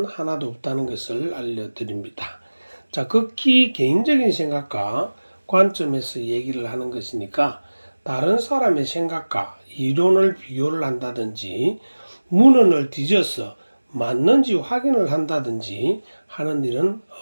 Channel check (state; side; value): inverted; both; correlation -1.00